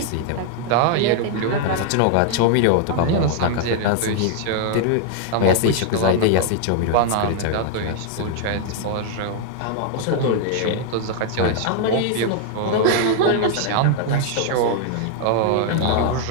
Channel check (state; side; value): different; both; correlation 0.00